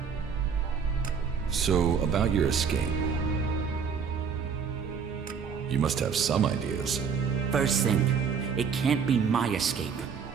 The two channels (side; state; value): left; quieter; 6.3 dB